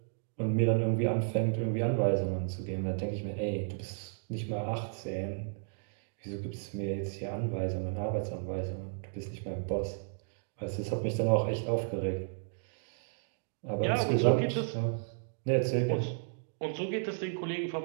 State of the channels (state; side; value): silent; left; digital silence